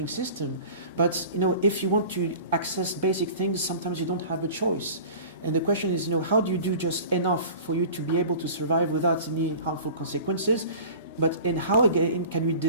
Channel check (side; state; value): both; inverted; correlation -0.41